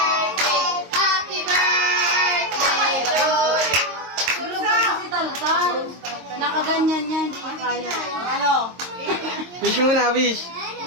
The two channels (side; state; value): left; late; 22 ms